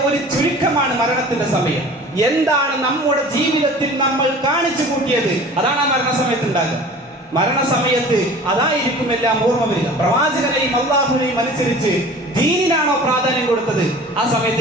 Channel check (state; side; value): normal; both; correlation 0.42